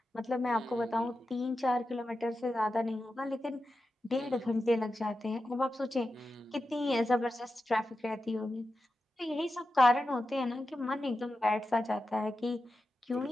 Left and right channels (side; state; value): both; normal; correlation 0.91